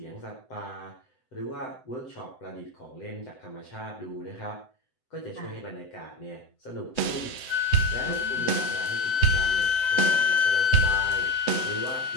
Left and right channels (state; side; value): late; right; 7.9 ms